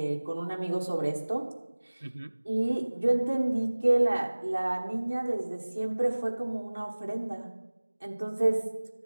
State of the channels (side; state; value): both; inverted; correlation -1.00